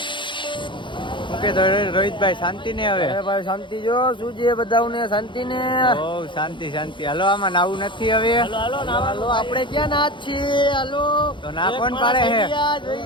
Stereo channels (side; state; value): right; late; 0.23 ms